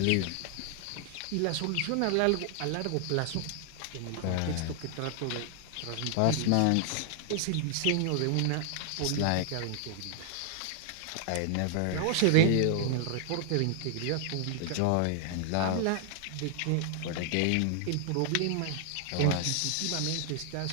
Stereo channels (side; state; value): both; different; correlation 0.00